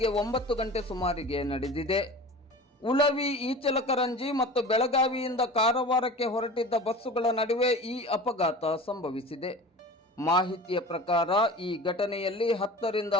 9 ಗಂಟೆ ಸುಮಾರಿಗೆ ನಡೆದಿದೆ. ಉಳವಿ, ಈಚಲಕರಂಜಿ ಮತ್ತು ಬೆಳಗಾವಿಯಿಂದ ಕಾರವಾರಕ್ಕೆ ಹೊರಟಿದ್ದ ಬಸ್ಸುಗಳ ನಡುವೆ ಈ ಅಪಘಾತ ಸಂಭವಿಸಿದೆ. ಮಾಹಿತಿಯ ಪ್ರಕಾರ ಈ ಘಟನೆಯಲ್ಲಿ 10 ರಿಂದ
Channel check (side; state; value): both; normal; correlation 0.37